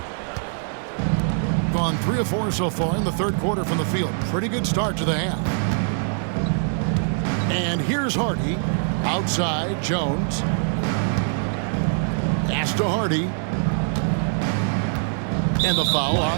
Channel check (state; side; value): silent; left; 59 dB below the other